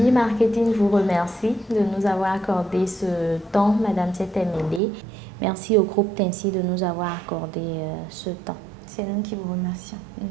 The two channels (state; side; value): drops out; left; at 4.8 s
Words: vous remercie de nous avoir accordé ce temps, Madame Setemele. Merci au groupe Tincy de nous avoir accordé ce temps. C'est nous qui vous remercions.